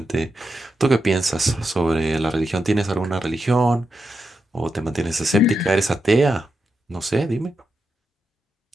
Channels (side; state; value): both; normal; correlation 0.86